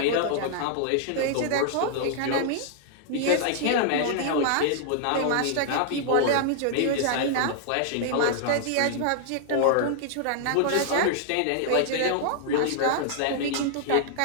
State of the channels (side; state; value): both; different; correlation -0.01